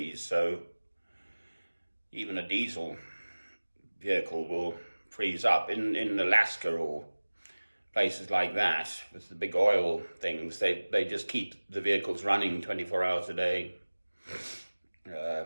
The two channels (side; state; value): both; inverted; correlation -1.00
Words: so even a diesel vehicle will freeze up. In Alaska or places like that, with the big oil things, they just keep the vehicles running 24 hours a day